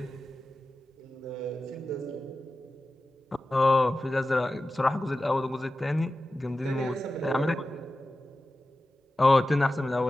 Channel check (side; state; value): both; normal; correlation 0.94